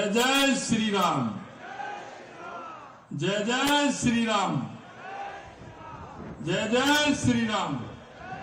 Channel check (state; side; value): identical; both; correlation 1.00